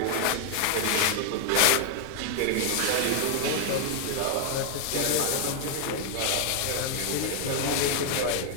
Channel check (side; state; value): both; different; correlation 0.01